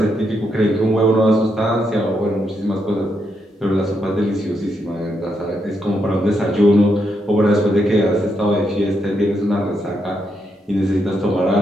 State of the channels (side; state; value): both; normal; correlation 0.80